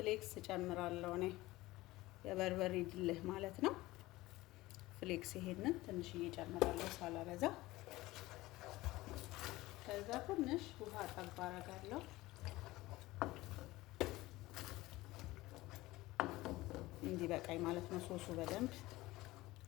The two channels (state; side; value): quieter; right; 18.7 dB